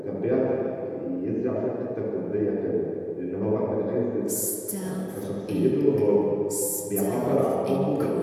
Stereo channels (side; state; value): both; identical; correlation 1.00